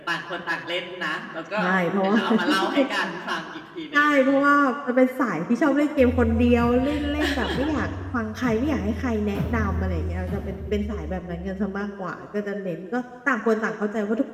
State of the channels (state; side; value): identical; both; correlation 1.00